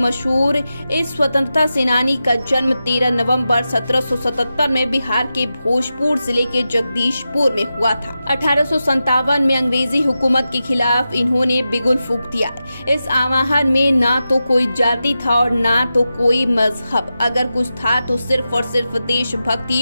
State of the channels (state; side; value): inverted; both; correlation -0.91